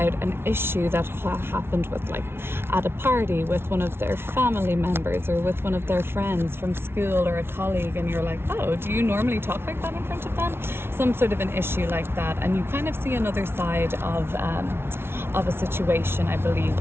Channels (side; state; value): left; late; 0.12 ms